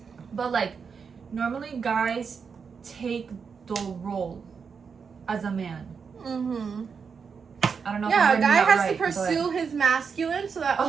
but like, normally guys take the role as a man. I don't know. Yeah, if a guy has right, to pursue his masculine so that a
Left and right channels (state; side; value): quieter; left; 5.9 dB